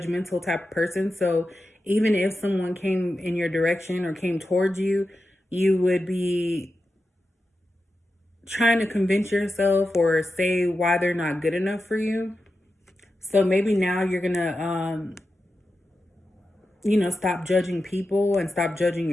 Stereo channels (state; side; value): normal; both; correlation 0.91